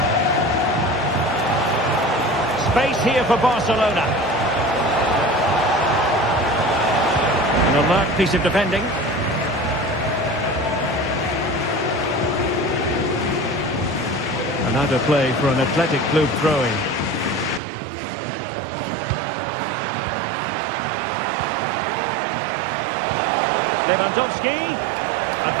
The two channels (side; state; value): left; drops out; at 17.6 s